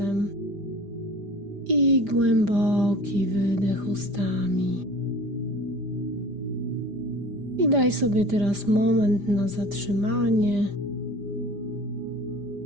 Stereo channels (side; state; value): left; late; 5.0 ms